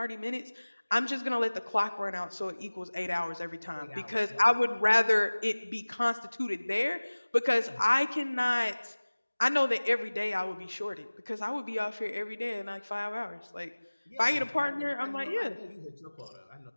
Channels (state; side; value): inverted; both; correlation -1.00